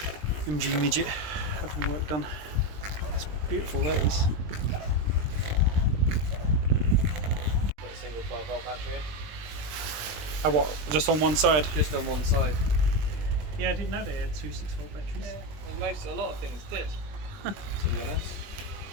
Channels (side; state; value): left; late; 20 ms